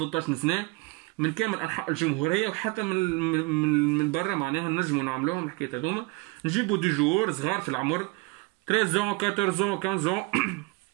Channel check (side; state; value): left; quieter; 25.5 dB